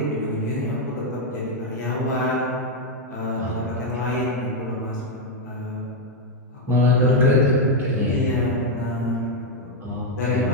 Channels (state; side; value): normal; both; correlation 0.01